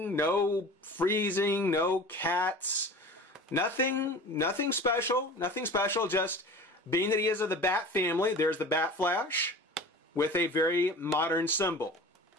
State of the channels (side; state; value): both; normal; correlation 0.39